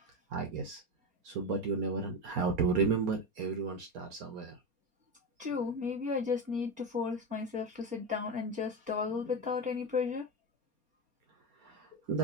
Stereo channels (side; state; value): left; late; 4.3 ms